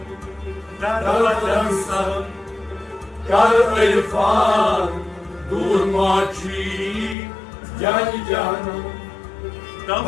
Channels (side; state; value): right; drops out; at 7.2 s